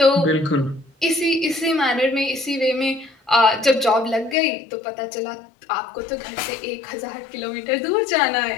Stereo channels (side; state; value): right; drops out; at 4.4 s